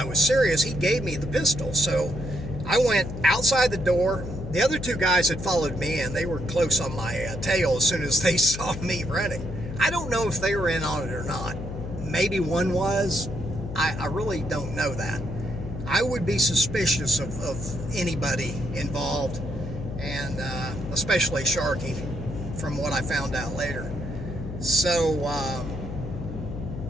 was serious, he gave me the pistol. So I went outside the door. The other two guys had followed me, and they were close on my tail as soon as they saw me running. I don't know if they were in on it or not. Maybe one was. I really don't know that. I would be suspicious of anybody involved, and especially Sharky, from what I found out later. So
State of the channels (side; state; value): left; noise; hum, 8 dB below the sound